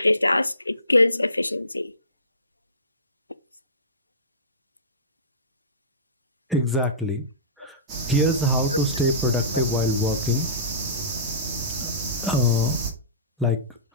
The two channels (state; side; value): inverted; both; correlation -0.31